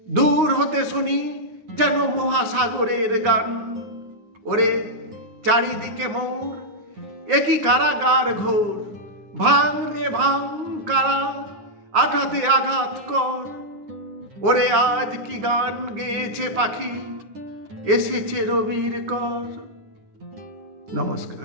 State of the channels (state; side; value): late; left; 9.6 ms